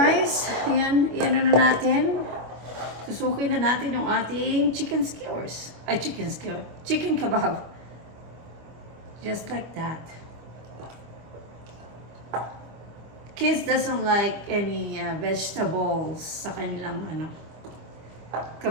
Yan na natin. Susukin na natin yung ating chicken skewers. Ay, chicken kebab. Just like that. Kids doesn't like any vegetables sa kanilang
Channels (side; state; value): left; late; 25 ms